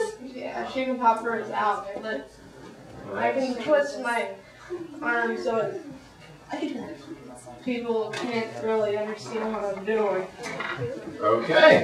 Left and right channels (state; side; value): identical; both; correlation 1.00